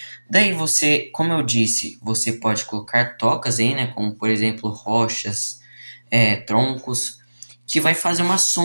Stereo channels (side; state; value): both; inverted; correlation -1.00